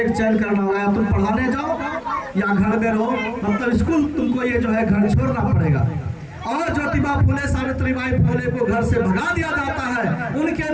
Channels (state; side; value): identical; both; correlation 1.00